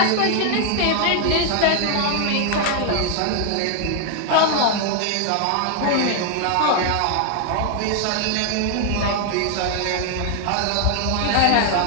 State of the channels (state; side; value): different; both; correlation 0.00